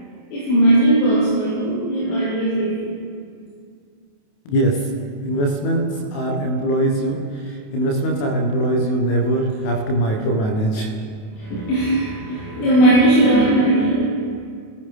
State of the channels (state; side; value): late; right; 28 ms